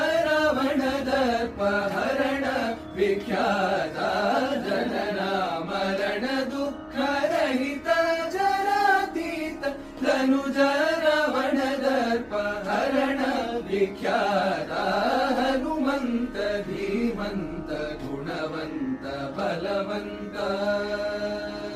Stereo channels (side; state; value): both; identical; correlation 1.00